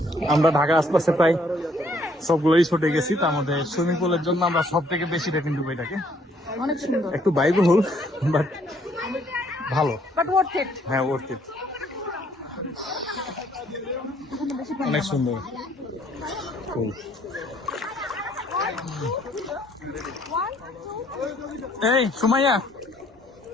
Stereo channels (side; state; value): both; normal; correlation 0.65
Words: আমরা ঢাকা আশপাশে প্রায় সবগুলোই ছুটে গেছি, তার মধ্যে সুইমিং পুলের জন্য আমরা সব থেকে বেশি রেটিং দেবো এটাকে। অনেক সুন্দর, একটু ব্যয়বহুল বাট ভালো। But worth it. হ্যাঁ, ওয়ার্থ ইট। অনেক সুন্দর। এই সুমাইয়া,